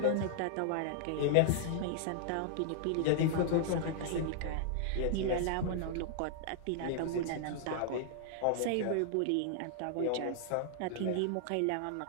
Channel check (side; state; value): both; different; correlation -0.01